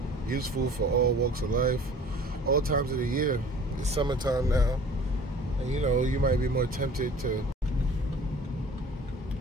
useful for all walks of life, all times of the year. It's summertime now, and you know, you might be more tempted to,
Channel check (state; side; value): normal; both; correlation 0.47